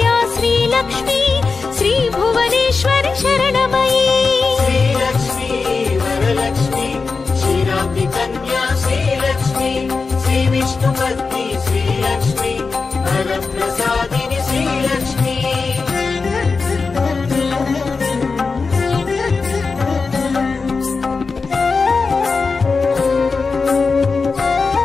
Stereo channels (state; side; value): quieter; right; 4.5 dB